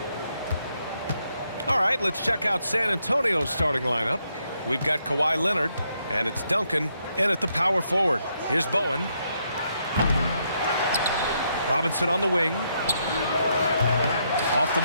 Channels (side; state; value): both; inverted; correlation -0.77